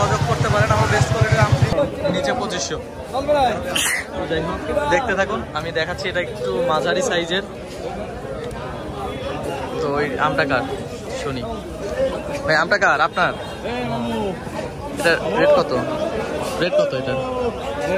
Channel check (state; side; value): identical; both; correlation 1.00